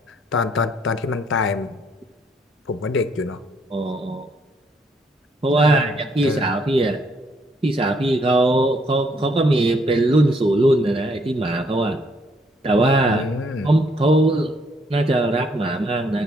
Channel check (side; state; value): both; normal; correlation 0.69